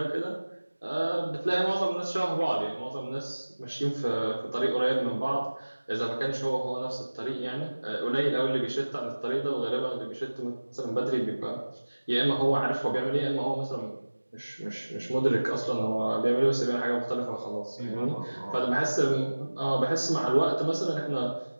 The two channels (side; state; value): both; inverted; correlation -1.00